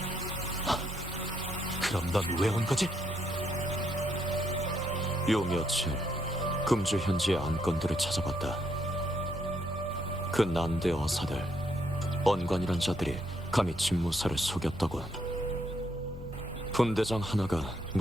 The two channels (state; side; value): normal; both; correlation 0.75